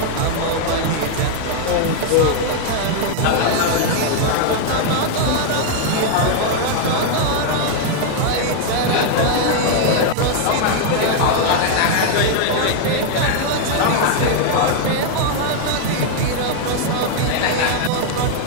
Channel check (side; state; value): both; different; correlation 0.00